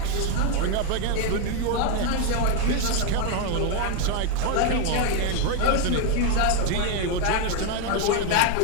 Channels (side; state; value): both; different; correlation 0.02